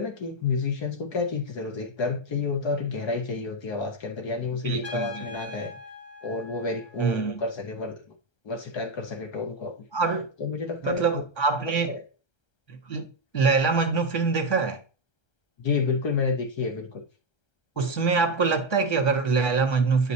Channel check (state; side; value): late; right; 1.3 ms